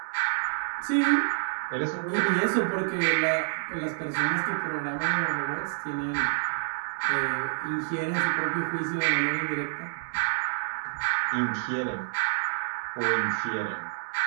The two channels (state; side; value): silent; left; digital silence